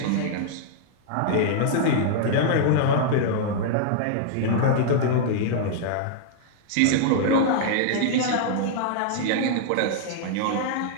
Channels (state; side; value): different; both; correlation -0.01